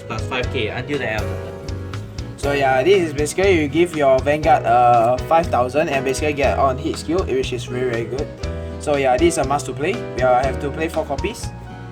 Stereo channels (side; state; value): both; identical; correlation 1.00